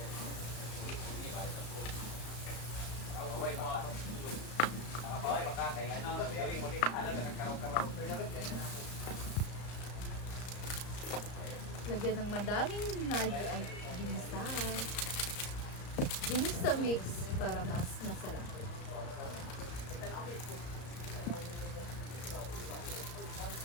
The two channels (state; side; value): late; right; 34 ms